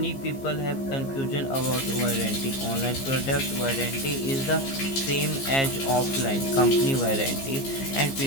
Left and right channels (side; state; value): right; late; 15 ms